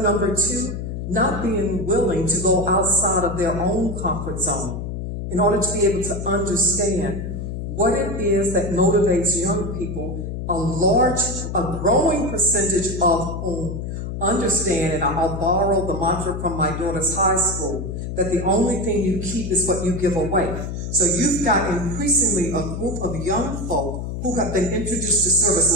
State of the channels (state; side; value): noise; left; hum, 5 dB below the sound